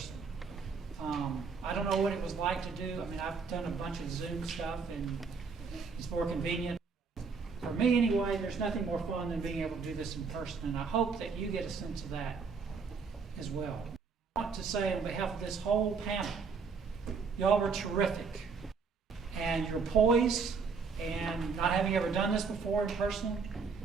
I don't know what it was like to do. I mean, I've done a bunch of Zoom stuff, and it's more convenient. For me, anyway, there's nothing more fun than being able to do this in person, and I hope that you get a sense of that as well. I want to say on behalf of this whole panel, y'all were terrific, and you're poised, and not having ever done this before in person,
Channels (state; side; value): quieter; left; 5.2 dB